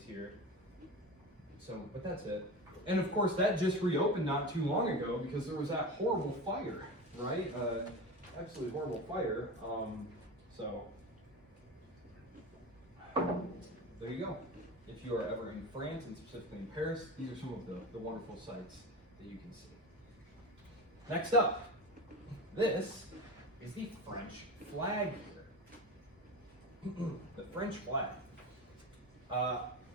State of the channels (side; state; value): both; normal; correlation 0.27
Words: here. So, but that's it. And of course, that just reopened not too long ago because there was that horrible fire, right? Absolutely horrible fire. So, there you go. If you are ever in France, and specifically in Paris, these are some of the wonderful sights that you can see. Next up, this is the French flag here. The French flag.